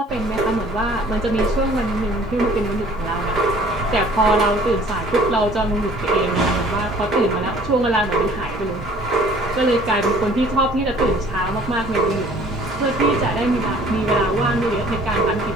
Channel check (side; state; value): both; normal; correlation 0.53